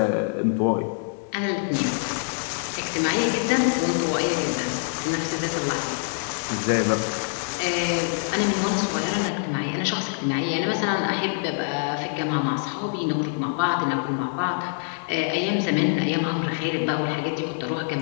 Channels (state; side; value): silent; right; 62 dB below the other